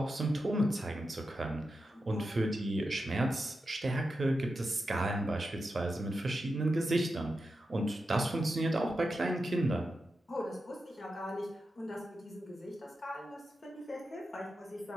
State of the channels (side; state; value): both; normal; correlation 0.89